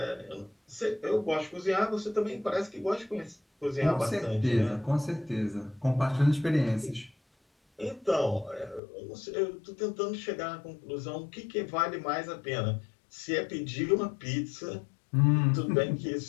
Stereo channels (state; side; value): drops out; right; at 8.8 s